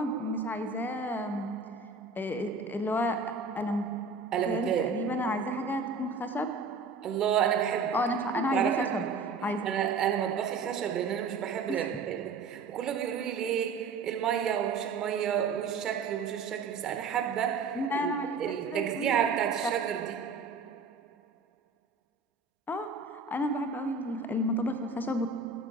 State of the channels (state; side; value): quieter; left; 4.4 dB